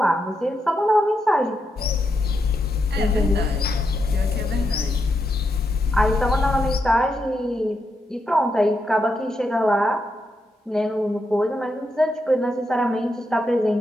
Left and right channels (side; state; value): both; normal; correlation 0.83